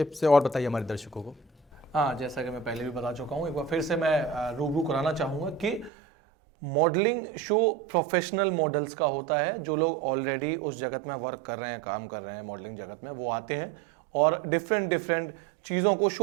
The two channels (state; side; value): drops out; left; at 5.9 s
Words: से और बताइए हमारे दर्शकों को। हाँ, जैसा कि मैं पहले भी बता चुका हूँ, एक बार फिर से मैं रूबरू कराना चाहूँगा कि मॉडलिंग शो प्रोफेशनल मॉडल्स का होता है। जो लोग ऑलरेडी उस जगत में वर्क कर रहे हैं, काम कर रहे हैं मॉडलिंग जगत में, वो आते हैं और डिफरेंट चीज़ों को